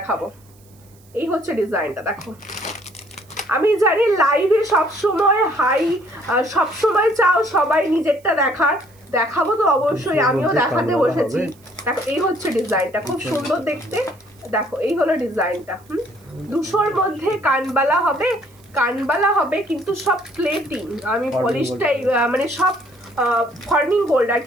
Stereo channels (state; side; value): noise; right; hiss, 30 dB below the sound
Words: এই হচ্ছে ডিজাইনটা, দেখো। আমি জানি লাইভে সবসময় সবসময় চাও সবাই নিজেরটা দেখার, দেখাবো তো অবশ্যই, আমিও দেখাতে বসেছি। দেখো এই হচ্ছে ডিজাইনটা, খুব সুন্দর দেখতে। দেখো এই হলো ডিজাইনটা। 200-র মধ্যে কানবালা হবে কিন্তু সব প্লেটিং। আমি পলিশটাই মানে সব ফর্মিং গোল্ড আর